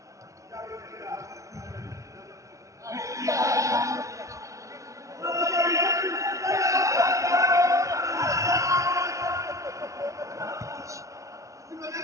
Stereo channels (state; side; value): late; left; 0.15 ms